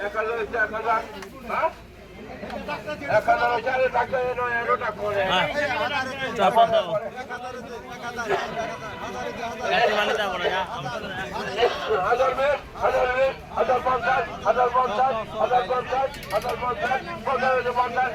1000 আছে 1000, হ্যাঁ 1000 আছে আরে টাকা এনো এনোটা করে চাপা দাও এই মানে দাও না 1000 মে 1000 মে 1050 1050 1050 1050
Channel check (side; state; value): both; identical; correlation 1.00